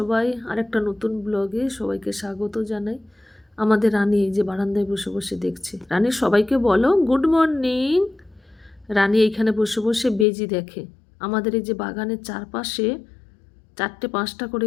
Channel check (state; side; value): drops out; right; at 10.2 s